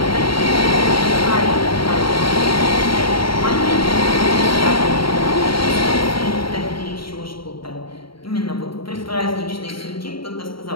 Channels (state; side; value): late; right; 0.74 ms